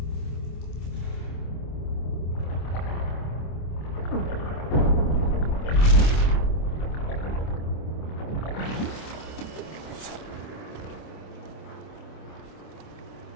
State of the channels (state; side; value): late; right; 26 ms